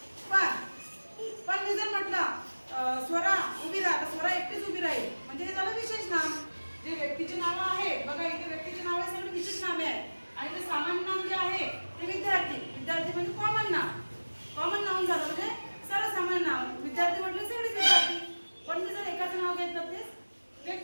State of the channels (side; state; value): both; inverted; correlation -1.00